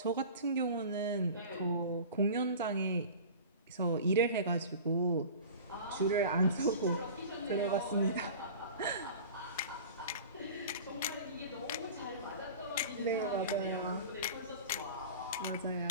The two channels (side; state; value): both; inverted; correlation -0.37